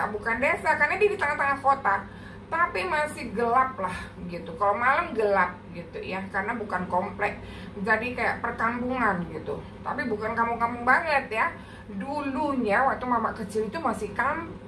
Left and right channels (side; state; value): both; identical; correlation 1.00